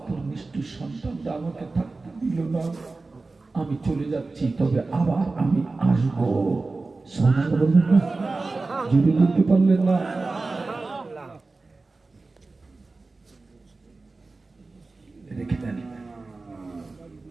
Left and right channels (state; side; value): quieter; left; 3.6 dB